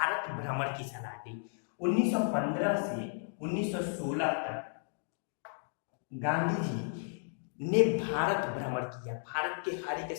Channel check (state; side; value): silent; right; digital silence